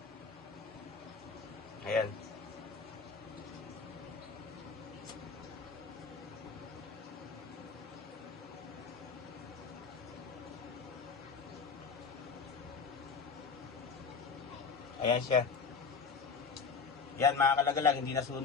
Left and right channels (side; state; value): right; quieter; 5.3 dB